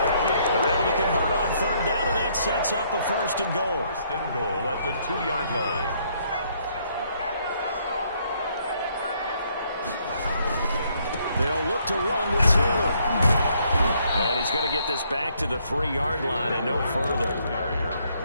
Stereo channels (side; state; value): both; inverted; correlation -0.69